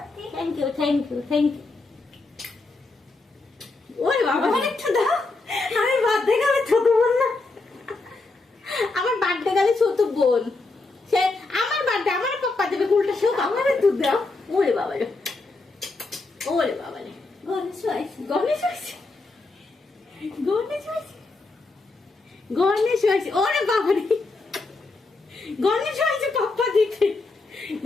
thank you thank you ওরে বাবা একটু দাও আমি বার্থডে গেলে ছোট বোন না আমার বার্থডে গেলে ছোট বোন সে আমার বার্থডে আমার পাপা দেবে উল্টা সব আমার একটু দাও ওরে বাবা রে গণেশ হয়েছে ওরে বাবা রে গণেশ হয়েছে পাপ্পা দিতে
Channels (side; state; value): right; quieter; 3.5 dB